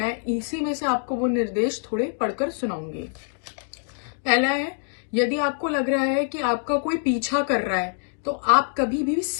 इसी में से आपको वो निर्देश थोड़े पढ़कर सुनाऊंगी। पहला है, यदि आपको लग रहा है कि आपका कोई पीछा कर रहा है तो आप कभी भी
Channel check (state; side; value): silent; right; digital silence